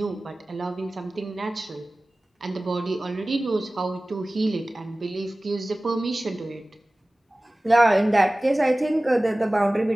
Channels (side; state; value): both; normal; correlation 0.98